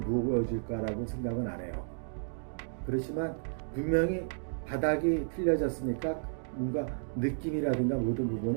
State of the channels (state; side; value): silent; left; digital silence